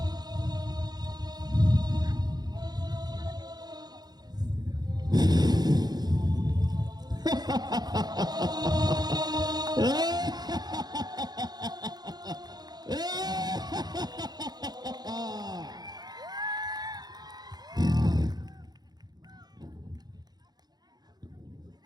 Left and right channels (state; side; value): late; left; 0.19 ms